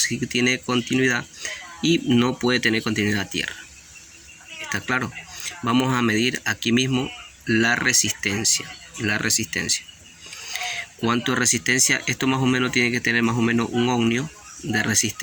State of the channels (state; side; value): identical; both; correlation 1.00